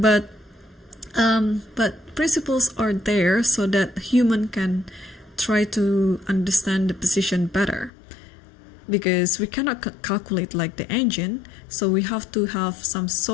principles are there so that human can try to understand the position better, because we cannot calculate like the engine. So we have to have some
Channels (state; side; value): drops out; right; at 7.9 s